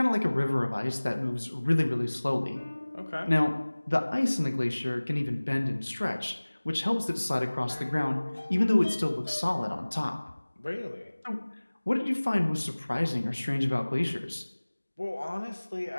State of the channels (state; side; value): inverted; both; correlation -1.00